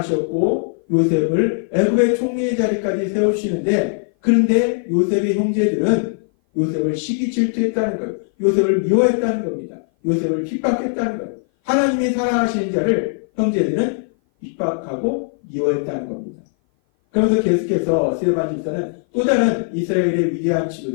요셉을 애굽의 총리의 자리까지 세우시는데 그런데 요셉의 형제들은 요셉을 시기 질투했다는 것, 요셉을 미워했다는 겁니다. 요셉을 핍박했다는 것. 하나님이 사랑하시는 자를 형제들은 핍박하고 미워했다는 겁니다. 그러면서 계속해서 스데반 집사는 또 다른 이스라엘의 위대한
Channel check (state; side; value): silent; right; 57 dB below the other